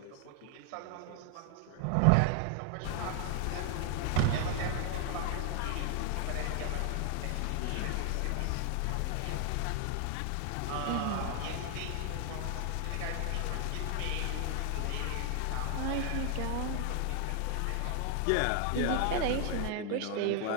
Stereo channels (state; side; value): different; both; correlation 0.00